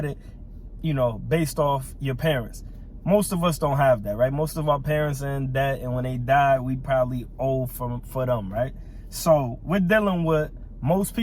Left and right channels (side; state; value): both; identical; correlation 1.00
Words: you know, based off your parents. Most of us don't have that, right? Most of our parents are in debt. And when they die, we probably owe for them, right? So we're dealing with most